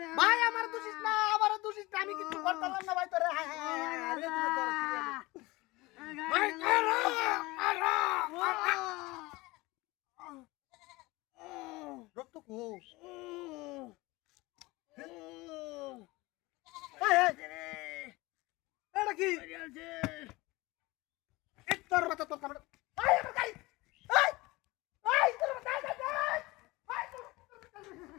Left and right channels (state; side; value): quieter; right; 21.6 dB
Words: ভাই আমার দোষিস না আমার দোষিস না আমি কিছু করতাম না ভাই তোরে ভাই রক্ত কো এটা কি তোর মাথা তোর